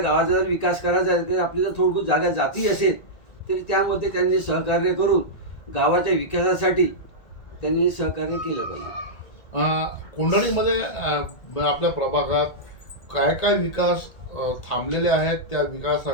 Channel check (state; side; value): late; right; 1.8 ms